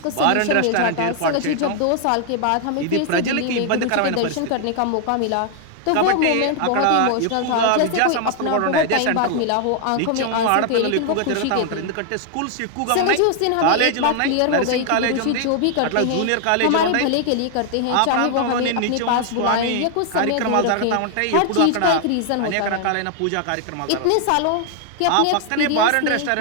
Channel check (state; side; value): different; both; correlation 0.00